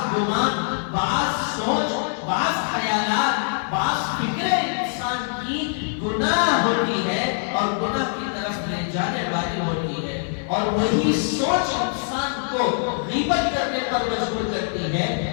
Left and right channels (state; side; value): silent; right; digital silence